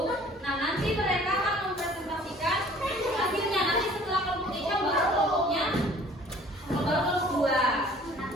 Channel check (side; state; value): both; normal; correlation 0.52